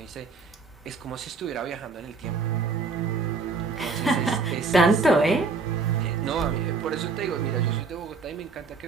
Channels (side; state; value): left; quieter; 4.4 dB